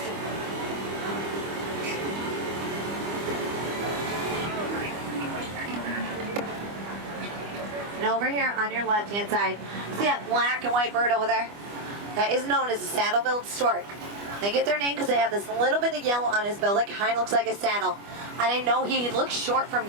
And over here on your left-hand side, see that black and white bird over there? That is known as a saddle-billed stork. They get their name because they have this little bit of yellow on his bill that kind of looks like a saddle. And I know he looks short from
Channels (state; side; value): late; left; 25 ms